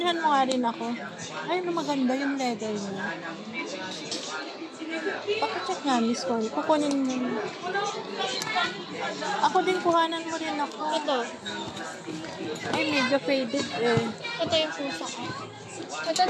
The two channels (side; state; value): both; identical; correlation 1.00